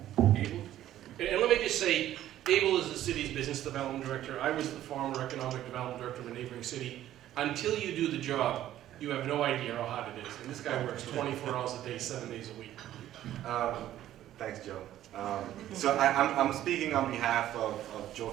Abel? And let me just say, Abel is the city's business development director. I was the former economic development director of a neighboring city. Until you do the job, you have no idea how hard it is. And this guy works 24 hours a day, 7 days a week. Thanks, Joe. So I'm speaking on behalf of Joe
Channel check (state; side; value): quieter; left; 12.8 dB